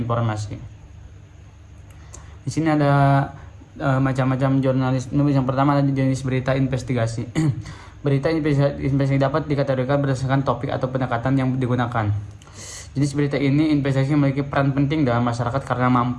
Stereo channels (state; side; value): identical; both; correlation 1.00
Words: Di sini ada macam-macam jurnalisme. Yang pertama ada jenis berita investigasi. Berita investigasi dapat dikategorikan berdasarkan topik atau pendekatan yang digunakan. Jenis berita ini investigasi memiliki peran penting dalam masyarakat karena